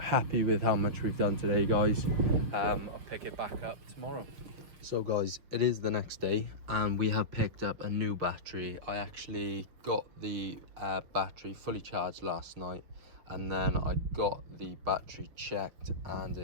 with how much we've done today, guys. I'll pick it back up tomorrow. So guys, it is the next day and we have picked up a new battery. I actually got the battery fully charged last night, and then I got the battery checked and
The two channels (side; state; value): left; late; 6.2 ms